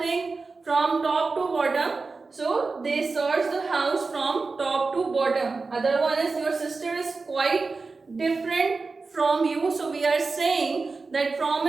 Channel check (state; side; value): quieter; left; 4.1 dB